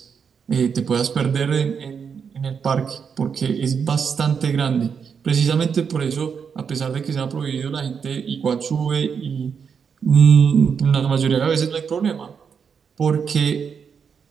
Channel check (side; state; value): left; quieter; 6.5 dB